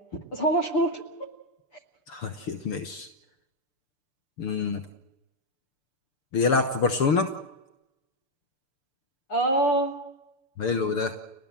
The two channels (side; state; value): right; late; 6.9 ms